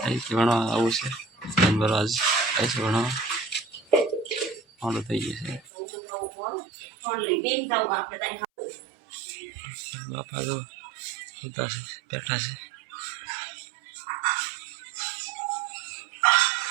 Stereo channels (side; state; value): left; drops out; at 5.6 s